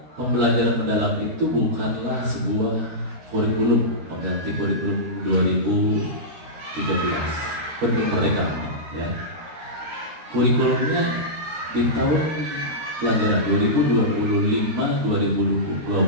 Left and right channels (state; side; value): late; left; 13 ms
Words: pembelajaran mendalam itu bukanlah sebuah kurikulum pengganti kurikulum 2013, kurikulum Merdeka ya. Kurikulumnya di tahun pelajaran 2025-2026